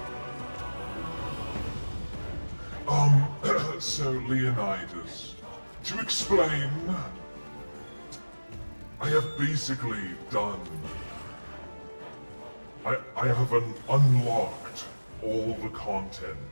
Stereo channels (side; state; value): both; inverted; correlation -1.00